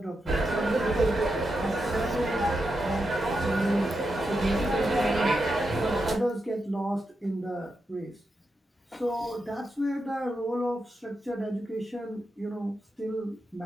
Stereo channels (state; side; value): normal; both; correlation 0.87